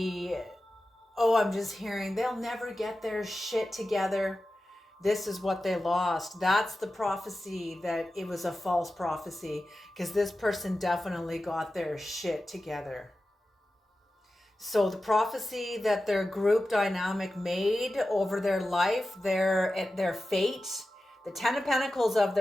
oh, I'm just hearing, they'll never get their shit together. This is what they lost. That's the prophecy, that it was a false prophecy, because this person definitely got their shit together. So the prophecy that their group dynamic made over their life, their fate, the Ten of Pentacles of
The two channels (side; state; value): both; normal; correlation 0.93